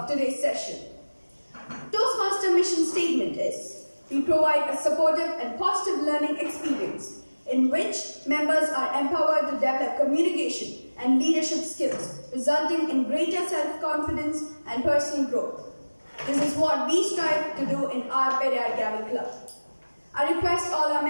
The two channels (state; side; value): inverted; both; correlation -1.00